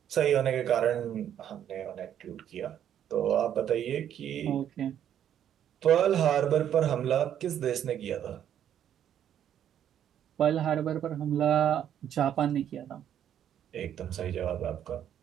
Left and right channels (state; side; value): quieter; left; 10.0 dB